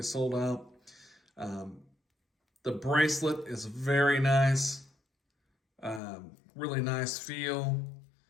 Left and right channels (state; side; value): drops out; right; at 6.0 s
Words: sold out. The bracelet is very nice. Really nice feel.